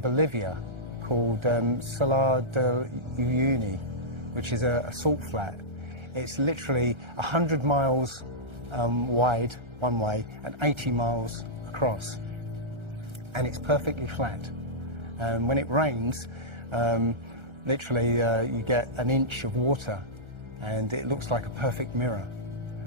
called Salar de Uyuni, which is a salt flat. It's literally 100 miles wide one way and 80 miles across. And it's perfectly flat. When it rains, literally you get an inch of water and it looks like a perfect mirror.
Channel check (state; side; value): late; left; 1.3 ms